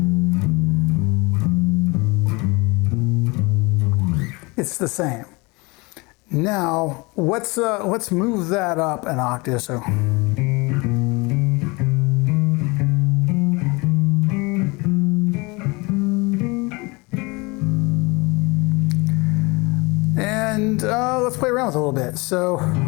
it's the same. Now, let's move that up an octave. So, and let's play around with it a little bit. So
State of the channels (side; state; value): right; quieter; 26.1 dB